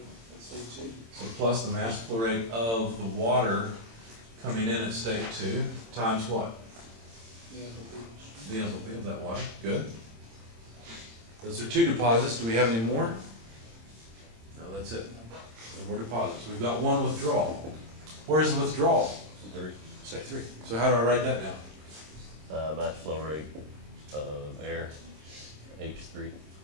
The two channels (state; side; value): late; left; 26 ms